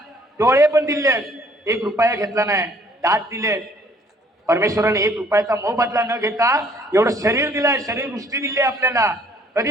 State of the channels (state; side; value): normal; both; correlation 0.60